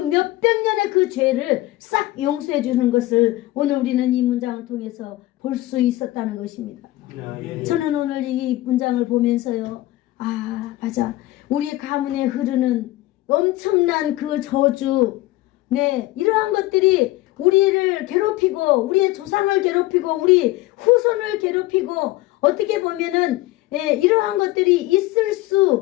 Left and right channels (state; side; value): quieter; right; 17.4 dB